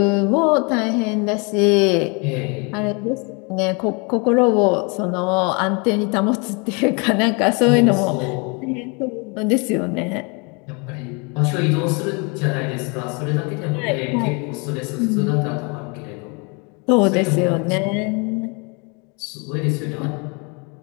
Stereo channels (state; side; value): quieter; right; 32.2 dB